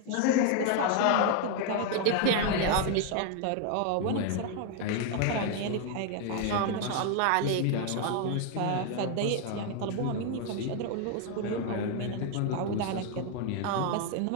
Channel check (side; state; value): both; different; correlation 0.01